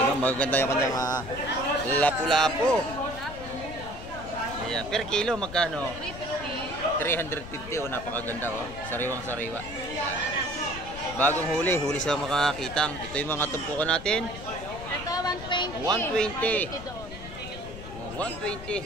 o, magaganda yung kanyang lapu-lapu. Ayan, per kilo magkano? 350 o, napakaganda o. Sariwang-sariwa. Bagong huli sa makakitang. Ito yung mga tumpukan natin. Ito, 120.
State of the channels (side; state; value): left; noise; rumble, 12 dB below the sound